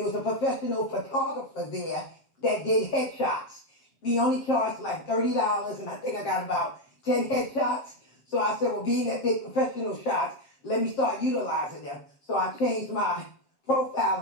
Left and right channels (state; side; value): late; right; 7.5 ms